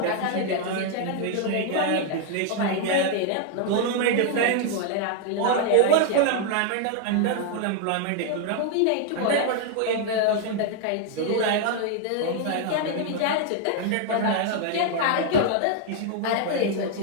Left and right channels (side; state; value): both; different; correlation 0.00